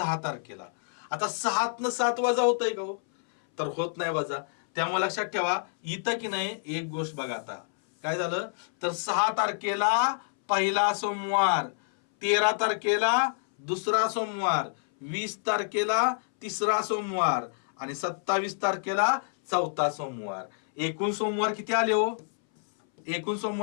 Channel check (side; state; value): right; silent; 59 dB below the other